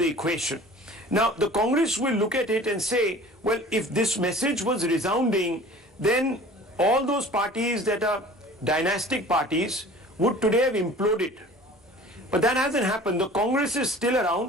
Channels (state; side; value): normal; both; correlation 0.45